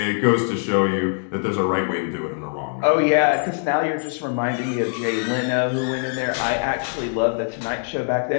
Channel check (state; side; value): silent; right; digital silence